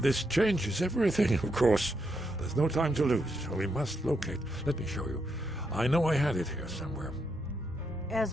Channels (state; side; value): normal; both; correlation 0.80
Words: changes everything, of course. There's no time to lose, so we must locate. Let me show you. I know I had it here somewhere.